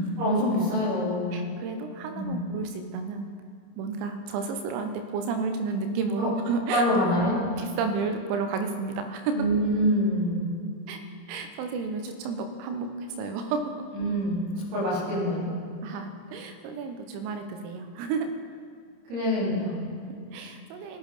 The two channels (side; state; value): left; late; 30 ms